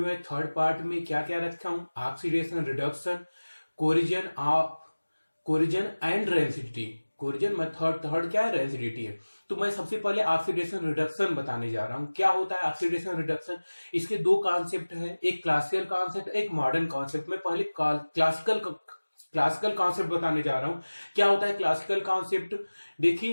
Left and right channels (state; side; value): inverted; both; correlation -1.00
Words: मैं थर्ड पार्ट में क्या क्या रखा हूं, oxidation, reduction, corrosion and rancidity. Corrosion में थर्ड क्या है, रेसिडिटी है। तो मैं सबसे पहले ऑक्सीडेशन रिडक्शन बताने जा रहा हूं। क्या होता है ऑक्सीडेशन रिडक्शन? इसके दो कॉन्सेप्ट है, एक क्लासिकल कॉन्सेप्ट, एक मॉडर्न कॉन्सेप्ट। मैं पहले क्लासिकल कॉन्सेप्ट बताने जा रहा हूं। क्या होता है क्लासिकल कॉन्सेप्ट?